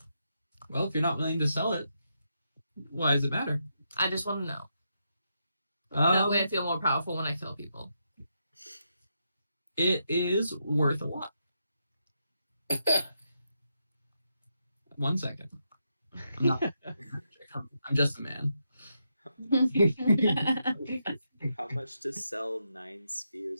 Well, if you're not willing to sell it, why does it matter? I just want to know. That way I Um, feel more powerful when I kill people. it is worth a lot. 1 second. I'm not. I'm just a man. How much to sell 9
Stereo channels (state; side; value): inverted; both; correlation -0.82